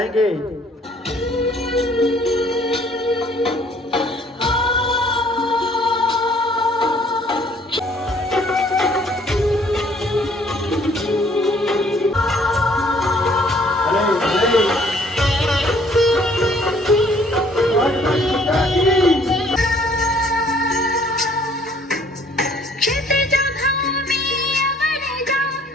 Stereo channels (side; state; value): both; normal; correlation 0.59